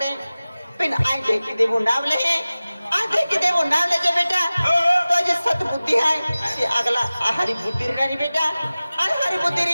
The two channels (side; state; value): both; inverted; correlation -0.97